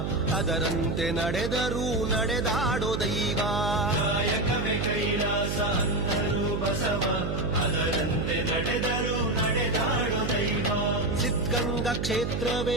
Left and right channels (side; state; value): right; noise; hum, 1 dB below the sound